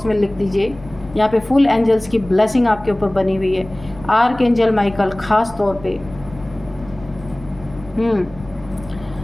में लिख दीजिए। यहाँ पे फुल एंजल्स की ब्लेसिंग आपके ऊपर बनी हुई है, आर्क एंजल माइकल खास तौर पे।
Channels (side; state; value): left; noise; rumble, 18 dB below the sound